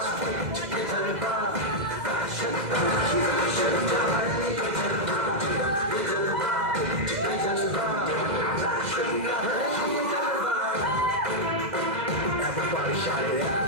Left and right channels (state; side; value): late; left; 2.0 ms